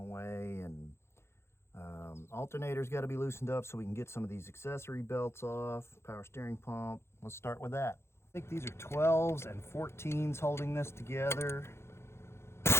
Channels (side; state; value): right; late; 0.12 ms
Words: and alternator's got to be loosened up so we can get some of these accessory belts off. Power steering pump. Let's start with that. I think these are 12s and 14s holding this together.